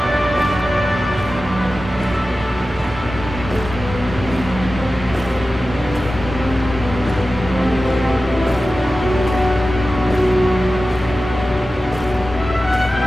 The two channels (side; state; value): both; normal; correlation 0.94